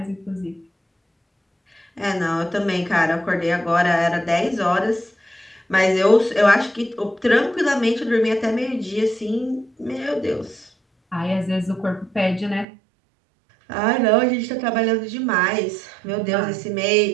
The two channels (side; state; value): left; drops out; at 12.7 s